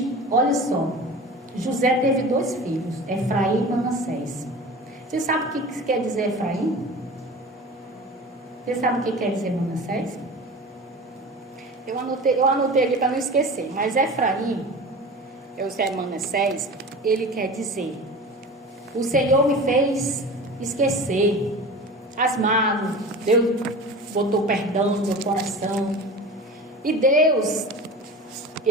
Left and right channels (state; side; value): normal; both; correlation 0.35